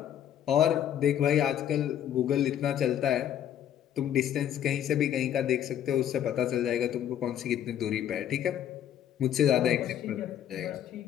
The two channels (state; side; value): quieter; right; 10.4 dB